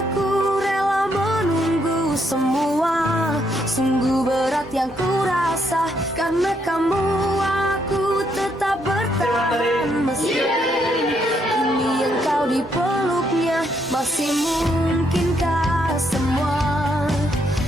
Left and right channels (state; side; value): normal; both; correlation 0.75